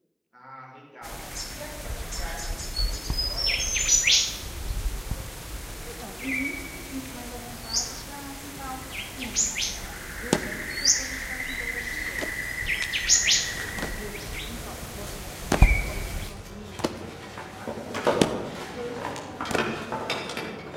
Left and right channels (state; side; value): identical; both; correlation 1.00